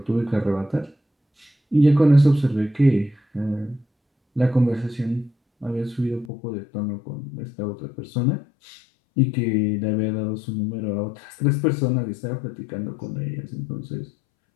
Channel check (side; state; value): right; drops out; at 6.3 s